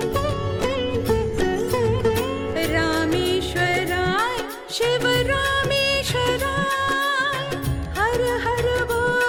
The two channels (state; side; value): identical; both; correlation 1.00